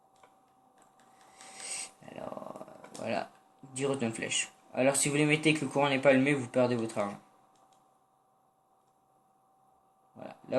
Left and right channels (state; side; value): identical; both; correlation 1.00